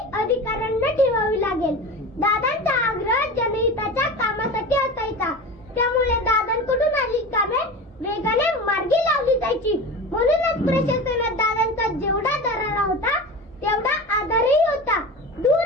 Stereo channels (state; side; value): normal; both; correlation 0.30